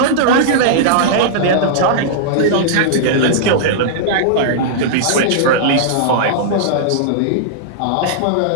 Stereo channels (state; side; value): different; both; correlation -0.02